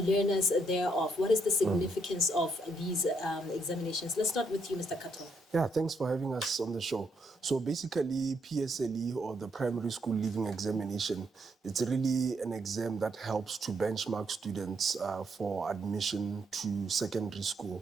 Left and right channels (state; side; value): normal; both; correlation 0.75